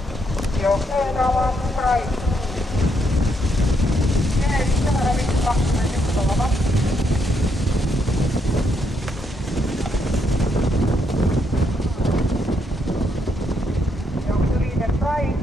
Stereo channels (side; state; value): both; normal; correlation 0.77